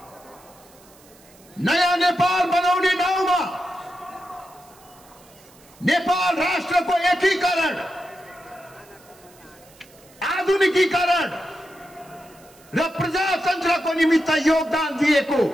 नयाँ नेपाल बनाउने नाउँमा नेपाल राष्ट्रको एकीकरण, आधुनिकीकरण र प्रजातन्त्रको निमित्त योगदान दिएको,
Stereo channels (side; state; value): right; noise; hiss, 26 dB below the sound